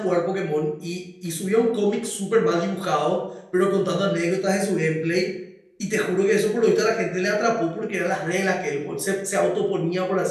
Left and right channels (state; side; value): identical; both; correlation 1.00